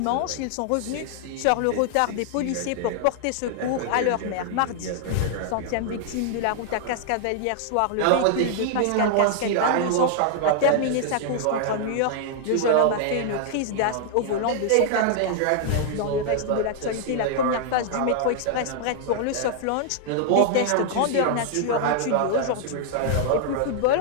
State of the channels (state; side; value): different; both; correlation -0.01